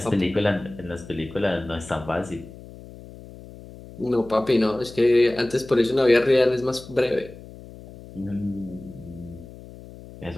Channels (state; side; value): noise; left; hum, 17 dB below the sound